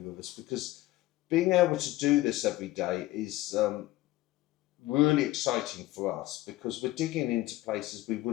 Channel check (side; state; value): right; quieter; 17.1 dB